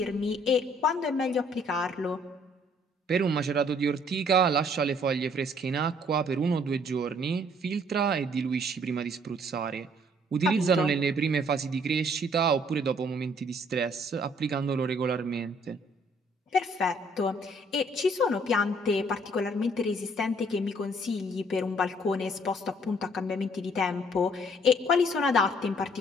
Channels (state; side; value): normal; both; correlation 0.62